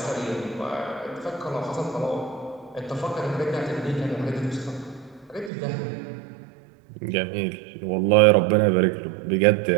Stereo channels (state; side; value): drops out; left; at 5.5 s